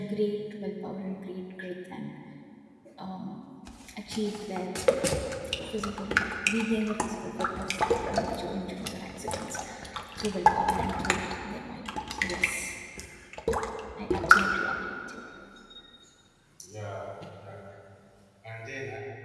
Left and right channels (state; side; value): identical; both; correlation 1.00